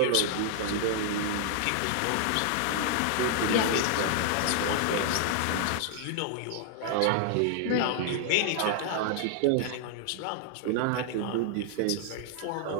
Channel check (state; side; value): different; both; correlation -0.01